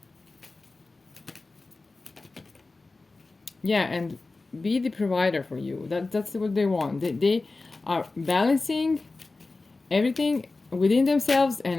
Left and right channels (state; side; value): quieter; right; 3.5 dB